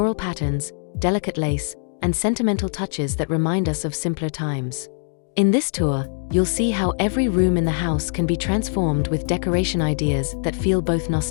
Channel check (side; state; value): right; silent; digital silence